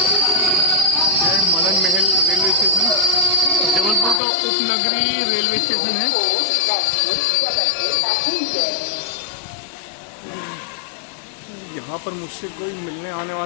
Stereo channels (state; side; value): drops out; right; at 4.2 s